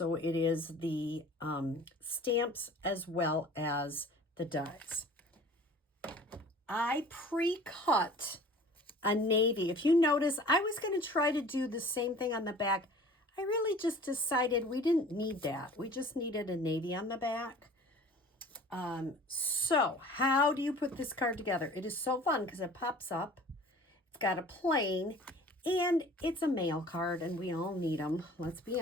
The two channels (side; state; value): both; normal; correlation 0.46